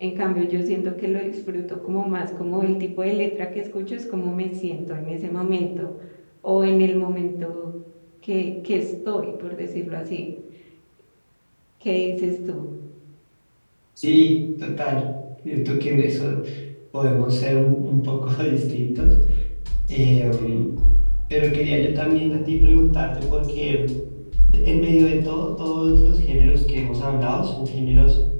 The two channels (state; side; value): inverted; both; correlation -1.00